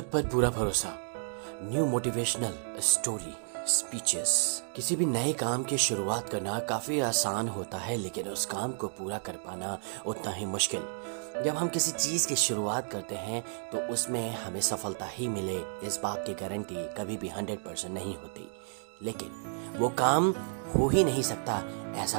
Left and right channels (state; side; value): silent; left; digital silence